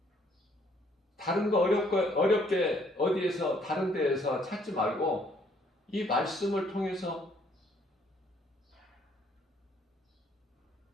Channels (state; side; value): normal; both; correlation 0.65